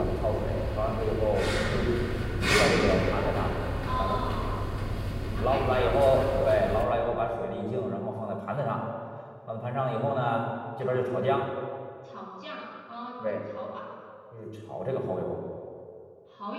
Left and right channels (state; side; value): identical; both; correlation 1.00